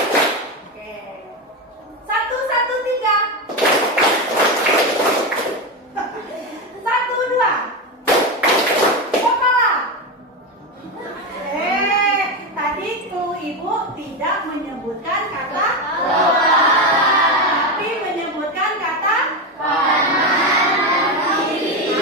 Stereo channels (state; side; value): normal; both; correlation 0.14